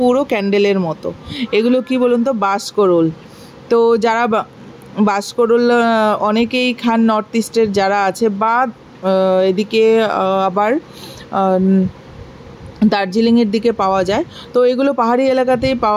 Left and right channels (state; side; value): identical; both; correlation 1.00